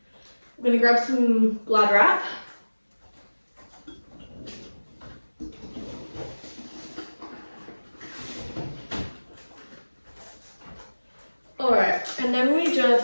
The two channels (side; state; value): both; inverted; correlation -1.00